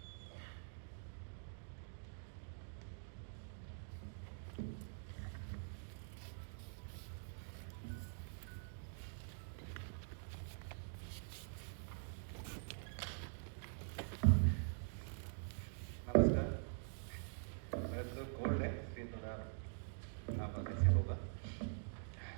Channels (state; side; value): silent; left; digital silence